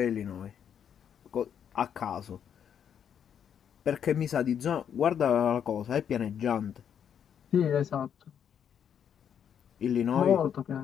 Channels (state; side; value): quieter; right; 8.5 dB